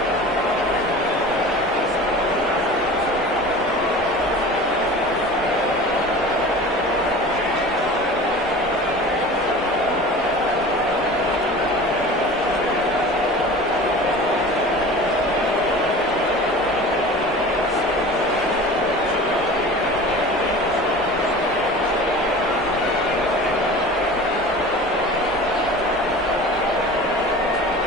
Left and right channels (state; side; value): normal; both; correlation 0.38